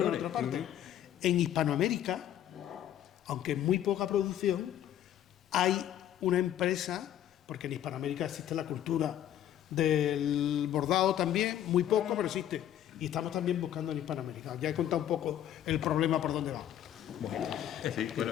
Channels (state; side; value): quieter; right; 11.2 dB